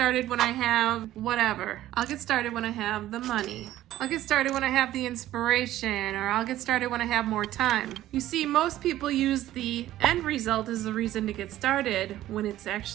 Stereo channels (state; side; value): quieter; left; 14.0 dB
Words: when I have whatever. I'll get started when I have the money. I'll get started when I have the inspiration, or I'll get started when I have more time. You see, most people use the end result as the reason to get started when it's